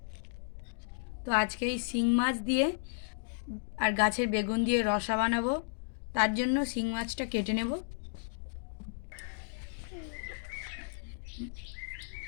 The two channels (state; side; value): silent; right; digital silence